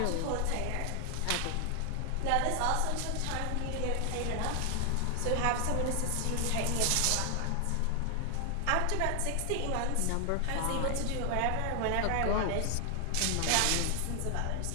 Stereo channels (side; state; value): both; different; correlation 0.00